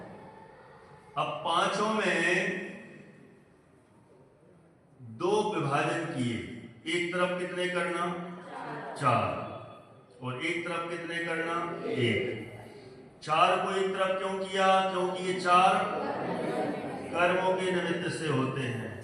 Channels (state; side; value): identical; both; correlation 1.00